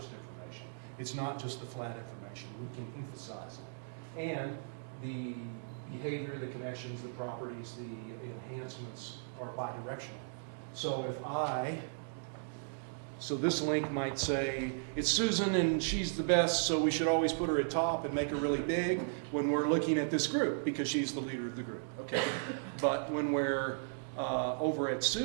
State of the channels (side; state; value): left; silent; digital silence